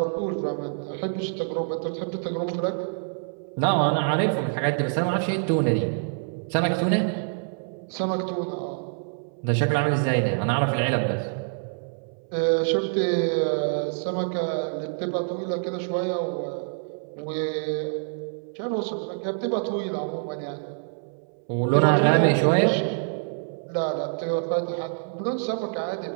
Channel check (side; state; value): left; silent; 61 dB below the other